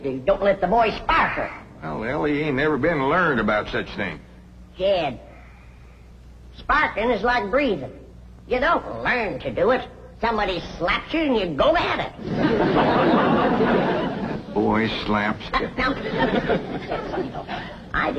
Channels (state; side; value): identical; both; correlation 1.00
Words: you don't let the boy spark her. Well, Ellie ain't never been learned about such things. Jed, sparking is like breathing. You don't learn to do it. Somebody slaps you and you go at it. Boy slaps. Now, I